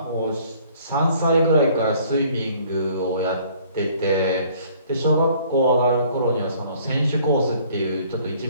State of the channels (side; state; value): both; inverted; correlation -0.57